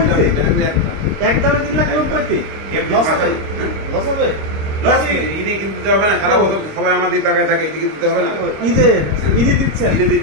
একদম 3,90,000 লস হবে? ঈদে কিন্তু দিতে হবে না, সারা বছর সবাই আমাদের টাকায় থাকে, ঈদে দিতে হবে না। ঈদে দিচ্ছেন? ঈদে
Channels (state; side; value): late; left; 26 ms